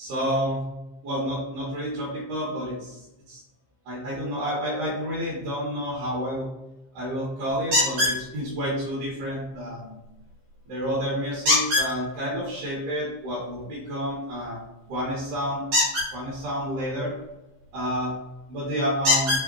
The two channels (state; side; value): late; left; 15 ms